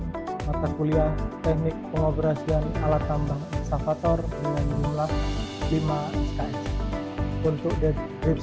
mata kuliah Teknik Pengoperasian Alat Tambang Ekskavator dengan jumlah 5 SKS. Untuk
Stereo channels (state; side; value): identical; both; correlation 1.00